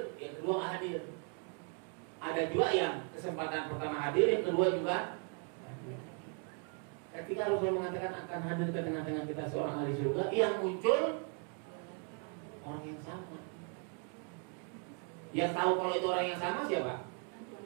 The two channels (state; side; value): quieter; left; 39.2 dB